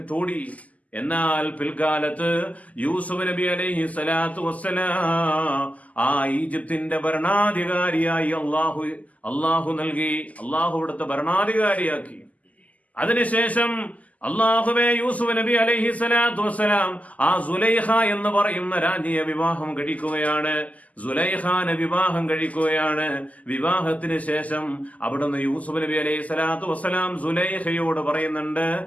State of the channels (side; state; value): right; late; 0.074 ms